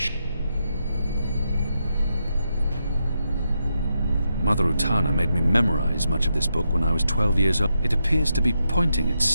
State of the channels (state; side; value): inverted; both; correlation -0.84